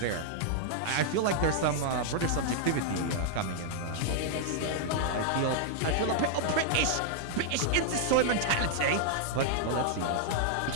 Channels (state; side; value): different; both; correlation -0.01